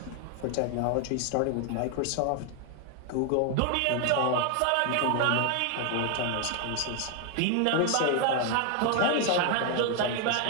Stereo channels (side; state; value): both; different; correlation 0.01